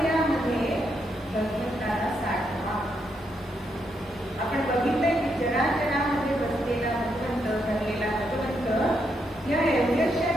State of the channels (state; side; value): normal; both; correlation 0.79